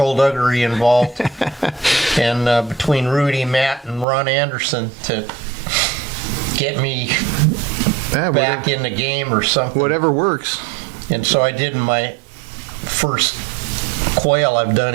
involved, and between Rudi, Matt, and Ron Anderson to get me back in the game or something. Whatever works. And so I did my first quail I've done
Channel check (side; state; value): left; drops out; at 4.0 s